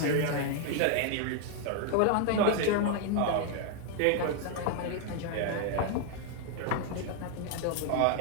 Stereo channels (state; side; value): different; both; correlation 0.00